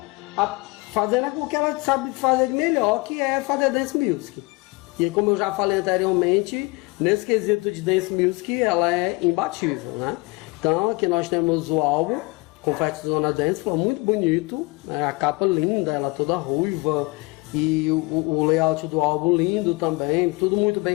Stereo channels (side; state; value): right; quieter; 25.7 dB